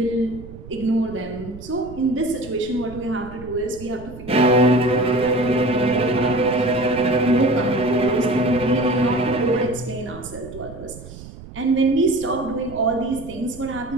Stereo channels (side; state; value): right; noise; rumble, 16 dB below the sound